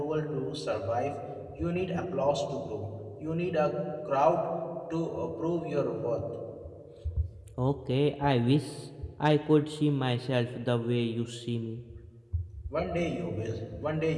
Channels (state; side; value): identical; both; correlation 1.00